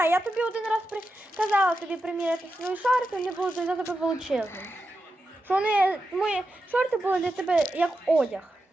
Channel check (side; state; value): both; normal; correlation 0.89